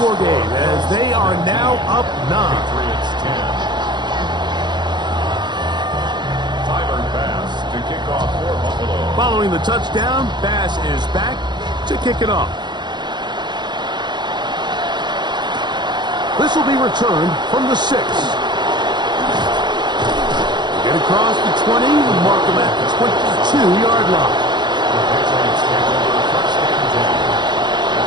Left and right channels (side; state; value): left; late; 0.21 ms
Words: game as they are now up 9. Following the touchdown, Bass is back to kick it off. This will be returned from the 6. Get across the 20, mark them at the 22-yard line. The Patriots take over first and 10 at